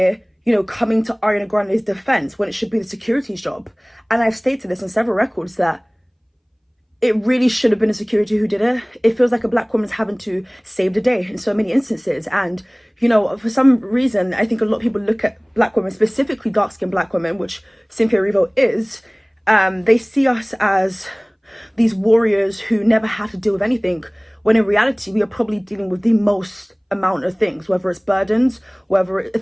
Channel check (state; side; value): identical; both; correlation 1.00